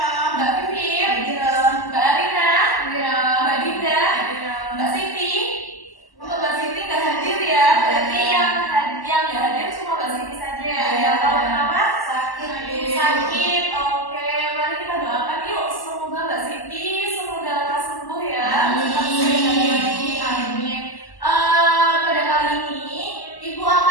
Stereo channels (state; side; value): late; right; 1.1 ms